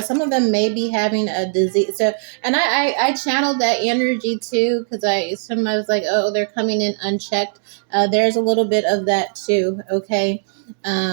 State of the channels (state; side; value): silent; left; 66 dB below the other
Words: may be having a disease. So, and I channeled that energy too, because I was like, oh, they're coming in unchecked. There's a little bit of that too. Okay,